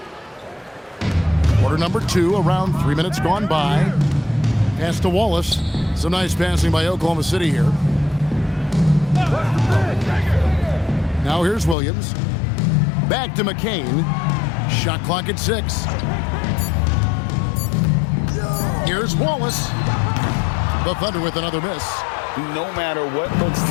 Quarter number 2, around 3 minutes gone by. Pass to Wallace. Some nice passing by Oklahoma City here. Now here's Williams. Back to McCain. Shot clock at 6. Here's Wallace. The Thunder with another miss. No matter what looks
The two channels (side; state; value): right; drops out; at 11.8 s